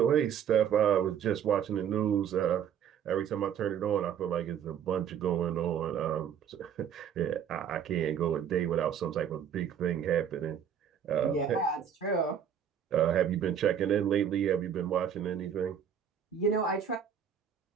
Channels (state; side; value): quieter; left; 8.4 dB